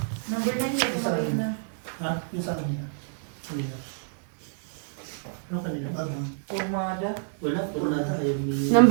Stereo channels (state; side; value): silent; left; digital silence